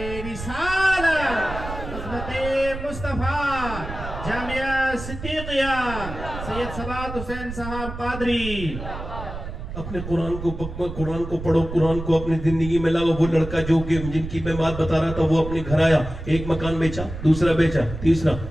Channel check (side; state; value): right; noise; rumble, 9 dB below the sound